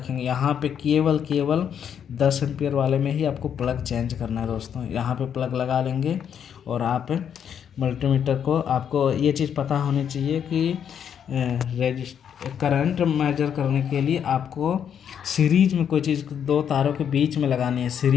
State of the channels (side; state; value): right; quieter; 8.4 dB